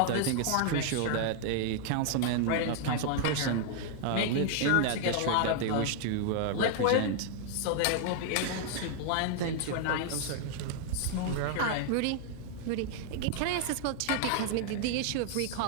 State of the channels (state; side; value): different; both; correlation 0.00